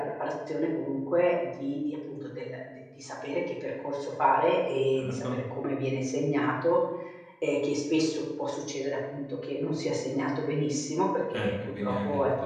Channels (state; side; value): identical; both; correlation 1.00